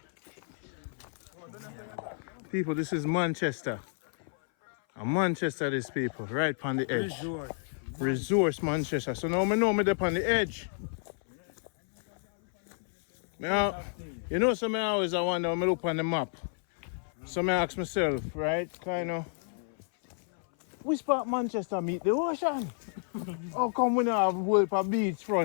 People, this is Manchester. Manchester, these people, right on the edge. Resource Manchester. So now I know me up on the edge. Now, you know, some I always wonder when I look on the map. So I ask myself, right, kind of, which part of Manchester meet the ocean? How come we don't have a whole beach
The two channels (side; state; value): right; silent; 57 dB below the other